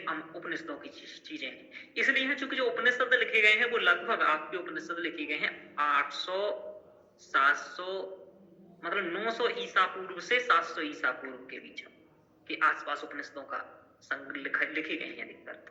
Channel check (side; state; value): both; identical; correlation 1.00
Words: उपनिषदों की चीजें हैं। इसलिए है चूंकि जो उपनिषद लिखे गए हैं वो लगभग आपके उपनिषद लिखे गए हैं 800, 700, मतलब 900 ईसा पूर्व से 700 ईसा पूर्व के बीच के आसपास उपनिषदों का लिखे गए हैं अधिकतर।